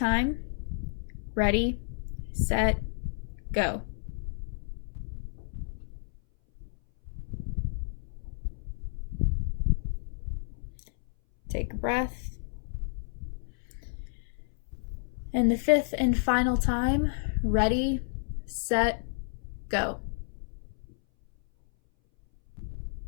ready, set, go. Take a breath. And the 5th and final time, ready, set, go.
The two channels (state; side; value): silent; right; 57 dB below the other